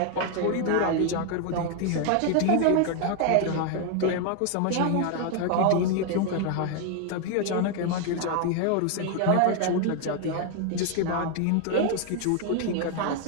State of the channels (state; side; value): different; both; correlation 0.00